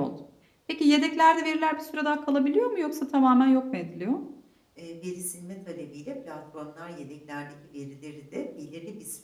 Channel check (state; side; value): identical; both; correlation 1.00